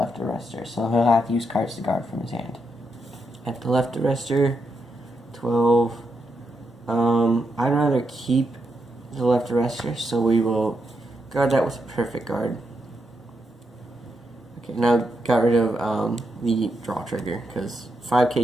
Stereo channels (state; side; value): normal; both; correlation 0.83